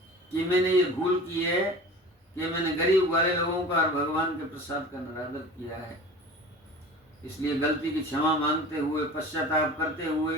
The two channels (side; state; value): both; normal; correlation 0.39